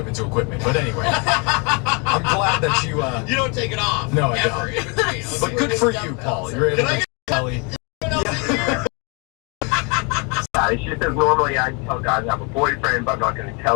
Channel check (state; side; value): quieter; right; 32.2 dB